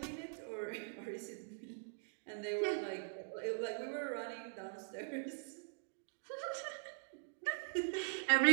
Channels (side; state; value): left; silent; digital silence